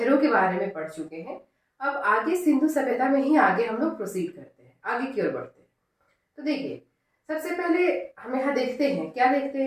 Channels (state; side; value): identical; both; correlation 1.00